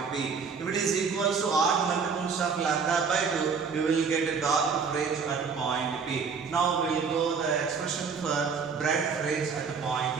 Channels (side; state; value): left; quieter; 5.6 dB